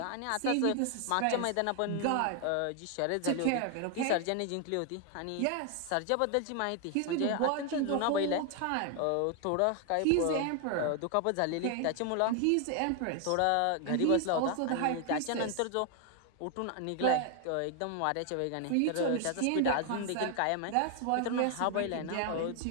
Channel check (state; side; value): different; both; correlation 0.00